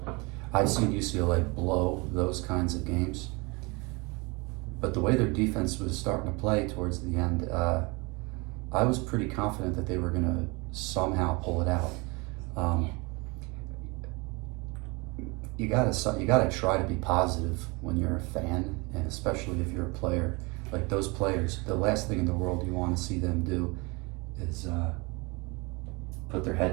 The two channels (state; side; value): quieter; left; 27.4 dB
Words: I've seen UCLA blow those kinds of games, but the way their defense was starting to play towards the end, I was pretty confident that they were going to somehow pull it out. You gotta try to be positive when you're a fan, and especially if you're a player. Like those players, the last thing in the world you want to see them do is put their